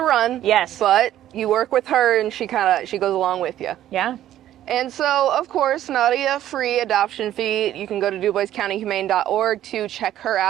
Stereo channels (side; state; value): left; quieter; 12.4 dB